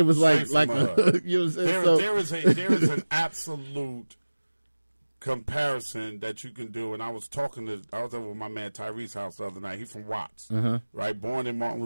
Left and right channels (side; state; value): both; inverted; correlation -1.00